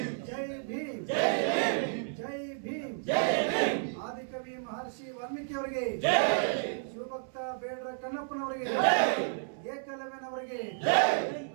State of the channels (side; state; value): left; silent; digital silence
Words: ಜೈ ಭೀಮ್, ಜೈ ಭೀಮ್. ಆದಿಕವಿ ಮಹರ್ಷಿ ವಾಲ್ಮೀಕಿ ಅವರಿಗೆ, ಶಿವಭಕ್ತ ಬೇಡ್ರ ಕಣ್ಣಪ್ಪನವರಿಗೆ, ಏಕಲವ್ಯನವರಿಗೆ,